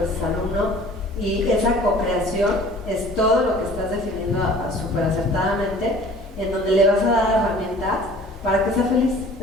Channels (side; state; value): both; normal; correlation 0.48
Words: veces alumno, y esa co-creación es todo lo que estás definiendo súper acertadamente, en donde le vas a dar herramientas para que sea feliz,